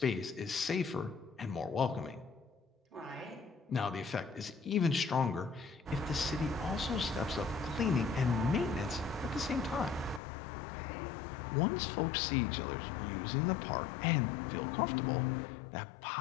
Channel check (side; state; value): right; drops out; at 10.2 s